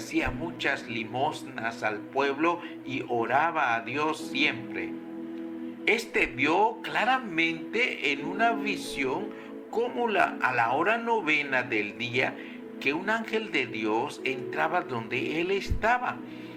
muchas limosnas al pueblo y oraba a Dios siempre. Este vio claramente en una visión como a la hora 9 del día, que un ángel de Dios entraba donde él estaba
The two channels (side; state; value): both; identical; correlation 1.00